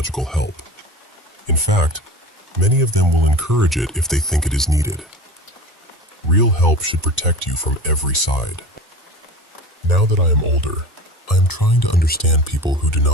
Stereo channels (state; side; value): normal; both; correlation 0.34